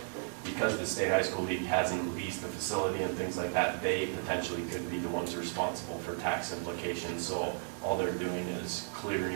because the State High School League hasn't leased the facility and things like that, they potentially could be the ones responsible for tax implications. So all they're doing is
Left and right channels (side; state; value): left; silent; digital silence